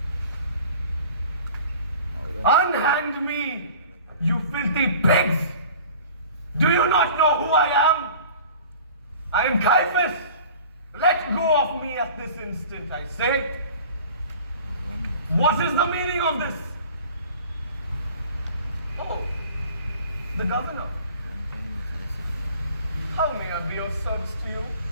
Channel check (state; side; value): inverted; both; correlation -0.45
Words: Unhand me, you filthy pigs! Do you not know who I am? I am Caiaphas. Let go of me at this instant, I say. What is the meaning of this? Oh, the governor. How may I be of service to you?